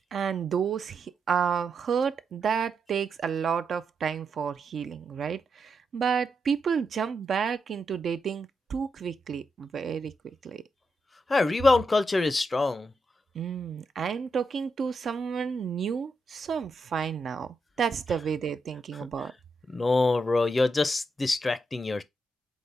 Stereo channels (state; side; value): normal; both; correlation 0.83